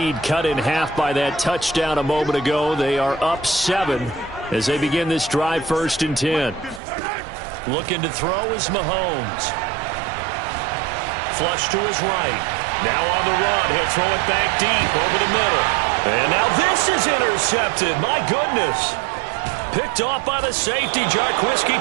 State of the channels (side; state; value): left; drops out; at 6.8 s